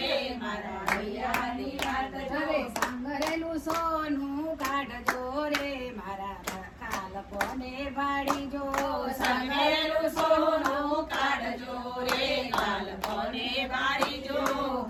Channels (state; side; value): identical; both; correlation 1.00